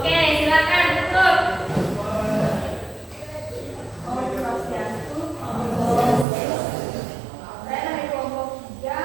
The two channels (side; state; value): left; drops out; at 6.2 s